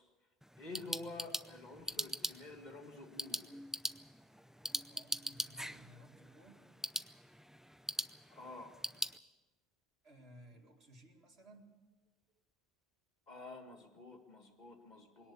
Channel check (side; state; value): both; normal; correlation 0.49